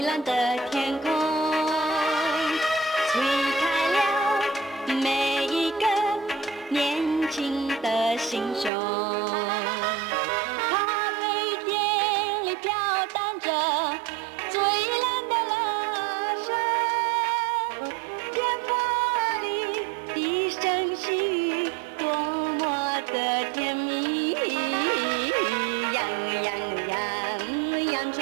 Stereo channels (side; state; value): left; drops out; at 8.7 s